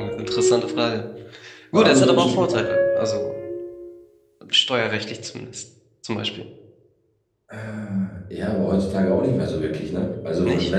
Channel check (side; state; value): both; identical; correlation 1.00